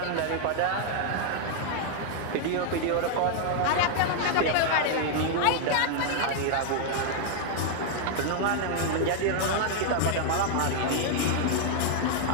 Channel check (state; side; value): different; both; correlation 0.00